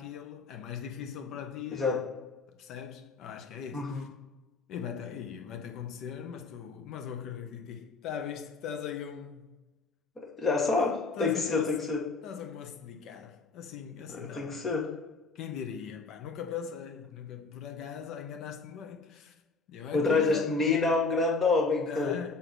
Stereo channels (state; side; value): quieter; right; 3.9 dB